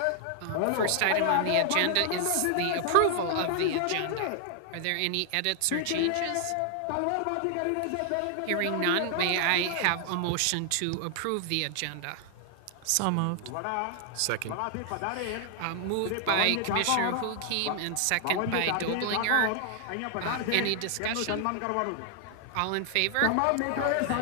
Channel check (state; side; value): different; both; correlation 0.00